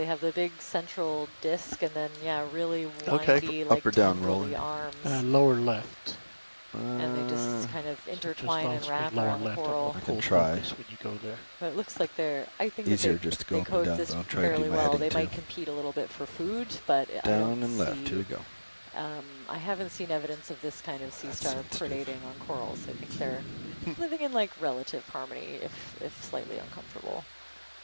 have the big central disc, and then really windy, like up or down rolling. arms. Lower left. And they just kind of intertwine and wrap lower around the left coral. I can try. When you go there. But it looks like I think Easier that just to go they up and down, coexist but I'll try to do fairly my well. heading They too. might compete a little bit for food, but I Down don't and left. see, Here we go. I haven't seen evidence of this kind of sea star predating on corals. I think they're living in like relative harmony, if slightly uncomfortable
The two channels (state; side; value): inverted; both; correlation -1.00